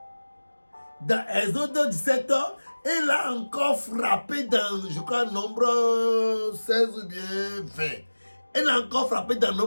dans Exode 17 et l'a encore frappé dans, je crois, nombre 16 ou bien 20. Elle a encore frappé dans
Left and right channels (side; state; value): both; inverted; correlation -1.00